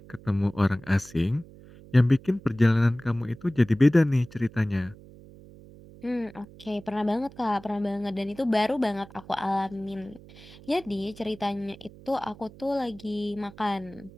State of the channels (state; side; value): noise; right; hum, 20 dB below the sound